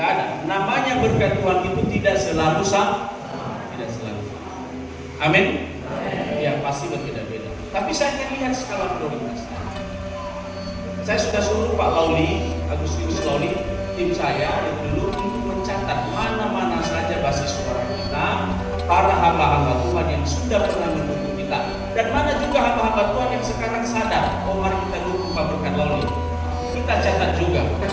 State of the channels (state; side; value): identical; both; correlation 1.00